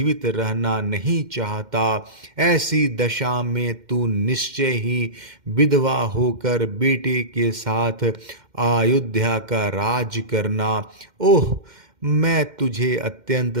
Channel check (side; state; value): left; late; 2.1 ms